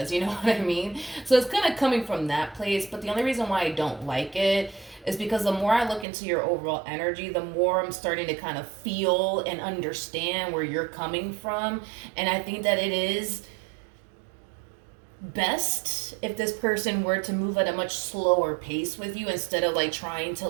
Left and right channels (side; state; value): left; drops out; at 6.1 s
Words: You know what I mean? So it's kind of coming from that place. But the only reason why I don't like it is because the more I look into your overall energy, the more I'm starting to kind of feel and understand where you're coming from. And I think that it is best if this person were to move at a much slower pace with you, instead of like trying to